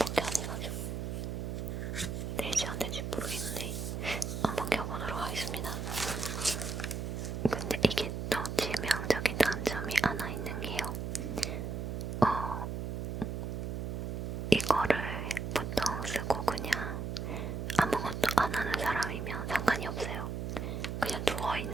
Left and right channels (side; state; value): right; noise; hum, 3 dB below the sound